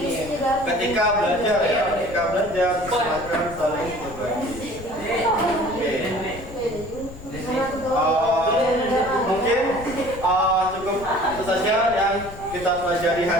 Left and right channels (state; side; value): noise; left; rumble, 15 dB below the sound